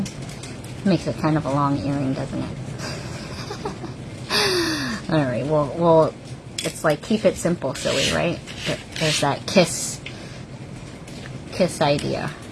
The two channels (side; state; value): both; identical; correlation 1.00